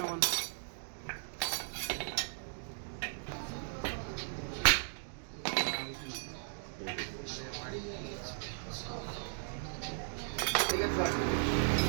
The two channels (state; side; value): silent; left; digital silence